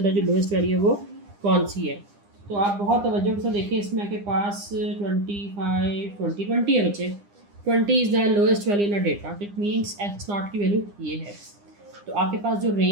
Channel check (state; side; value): late; left; 9.9 ms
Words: जो लोएस्ट वैल्यू है वो कौन सी है। तो आप बहुत तवज्जो से देखें, इसमें आपके पास 25, 20, 20 है बच्चे। 20 is the lowest value in a data, it means x not की वैल्यू ये है। तो आपके पास जो